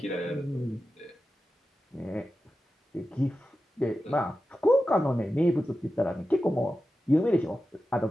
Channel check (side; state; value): both; normal; correlation 0.92